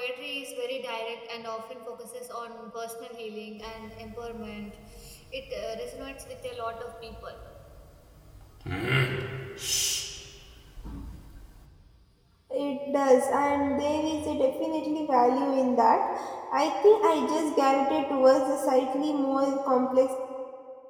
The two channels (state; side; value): identical; both; correlation 1.00